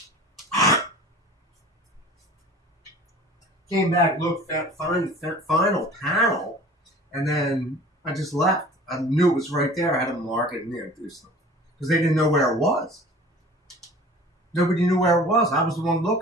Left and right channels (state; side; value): normal; both; correlation 0.44